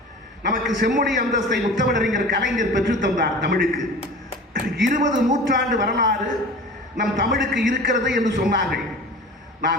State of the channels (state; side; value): normal; both; correlation 0.38